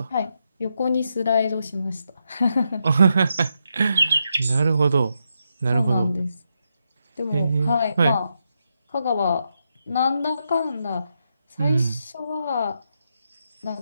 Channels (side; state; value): both; inverted; correlation -0.82